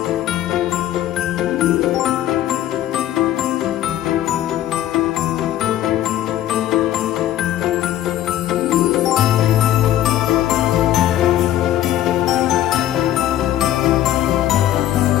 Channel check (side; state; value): right; quieter; 12.7 dB